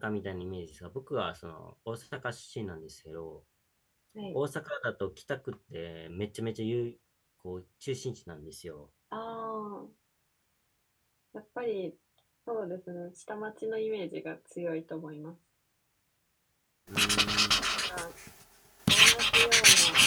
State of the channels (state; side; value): identical; both; correlation 1.00